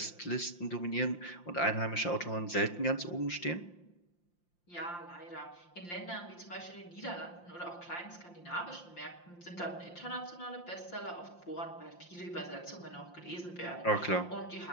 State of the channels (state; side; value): late; right; 5.7 ms